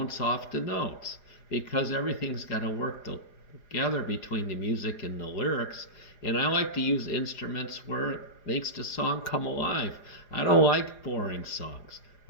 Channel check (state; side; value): late; right; 4.9 ms